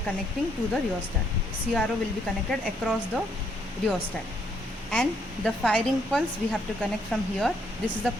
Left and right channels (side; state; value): both; normal; correlation 0.71